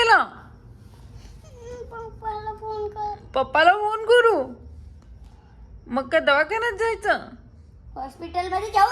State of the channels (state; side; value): identical; both; correlation 1.00